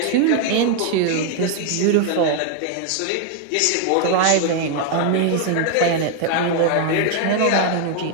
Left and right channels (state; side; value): different; both; correlation 0.00